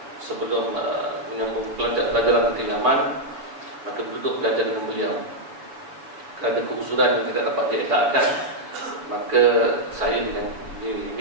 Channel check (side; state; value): left; late; 7.1 ms